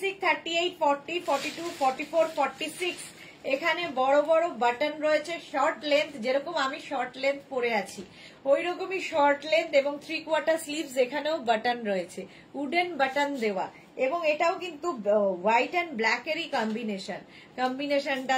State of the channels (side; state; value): both; identical; correlation 1.00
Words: 38, 40, 42, 44, 46। এখানে বড় বড় বাটন রয়েছে, শর্ট লেন্থ, যেরকম আমি শর্ট লেন্থ পরে আছি ওই রকমই শর্ট লেন্থ, এবং 3/4 স্লিভস, এখানেও বাটন রয়েছে, উডেন বাটন দেওয়া, এবং এটাও কিন্তু হোয়াইট অ্যান্ড ব্ল্যাক এরই কম্বিনেশন, কম্বিনেশনটা